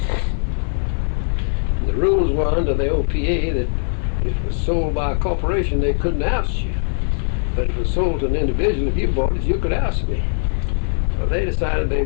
The rules were under the OPA that if it was sold by a corporation, they couldn't oust you. But if it was sold to an individual, if you bought it, you could oust me. So they decided they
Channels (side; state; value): right; silent; digital silence